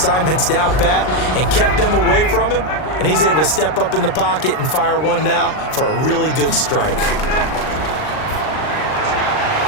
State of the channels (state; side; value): late; right; 39 ms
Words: down pat and kept them away from him, and he's able to step up in the pocket and fire one now for a really good strike.